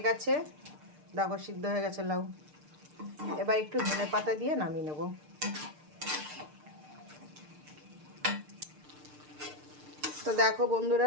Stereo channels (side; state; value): left; late; 6.6 ms